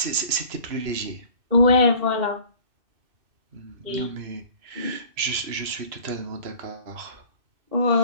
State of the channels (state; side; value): late; left; 2.7 ms